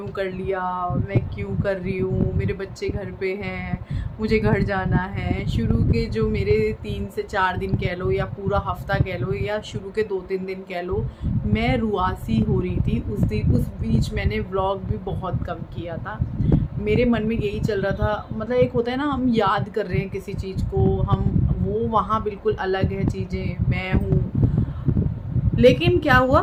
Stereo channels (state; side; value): identical; both; correlation 1.00